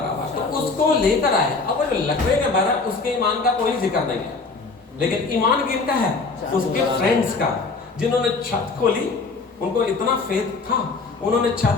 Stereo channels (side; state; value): right; quieter; 4.1 dB